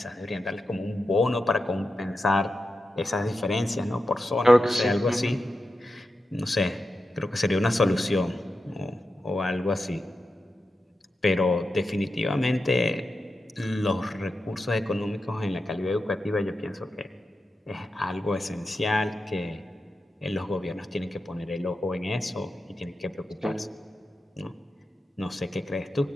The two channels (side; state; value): both; normal; correlation 0.89